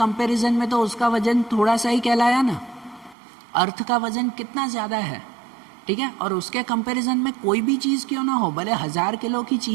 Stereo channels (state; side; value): drops out; left; at 3.2 s